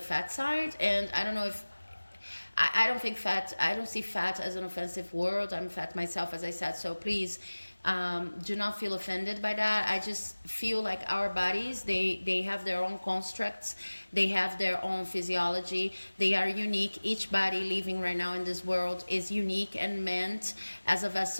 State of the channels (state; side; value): inverted; both; correlation -1.00